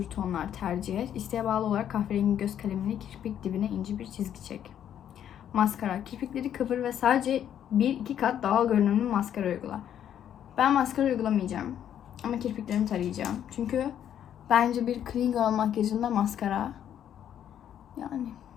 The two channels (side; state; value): right; quieter; 9.9 dB